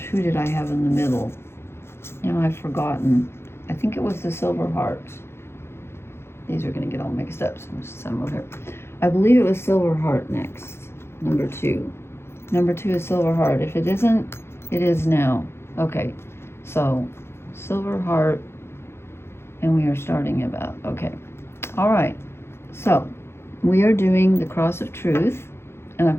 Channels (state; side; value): late; right; 0.12 ms